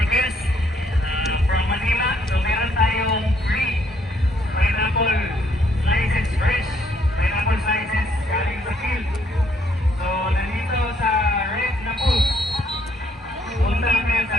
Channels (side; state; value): both; normal; correlation 0.68